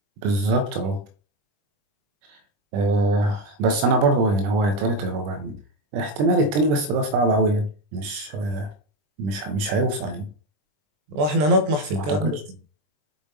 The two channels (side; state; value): left; late; 20 ms